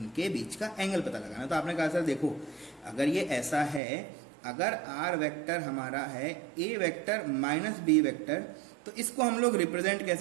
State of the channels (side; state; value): left; drops out; at 3.8 s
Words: बीच का एंगल पता लगाना। तो आपने कहा सर देखो अगर ये ऐसा है, अगर आर वेक्टर हमारा है A vector minus B vector, तो इसको हम लोग रिप्रेजेंट